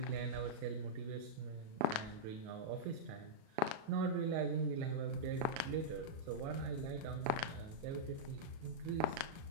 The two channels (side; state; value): left; late; 37 ms